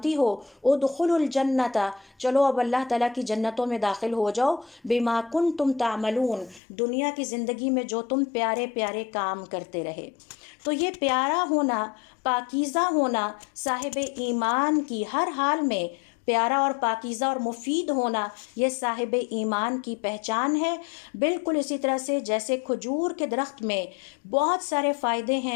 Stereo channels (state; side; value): drops out; right; at 6.6 s